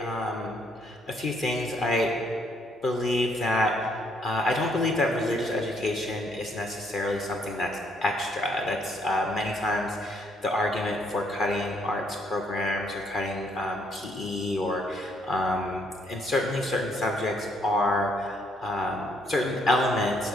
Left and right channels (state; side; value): normal; both; correlation 0.69